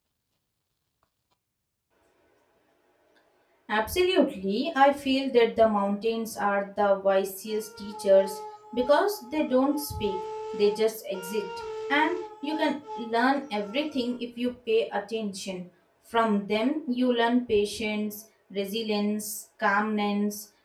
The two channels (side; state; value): both; identical; correlation 1.00